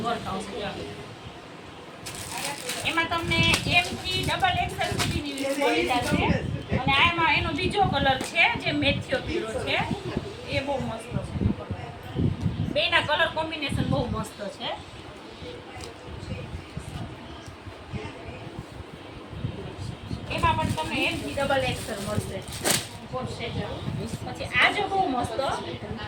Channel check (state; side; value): identical; both; correlation 1.00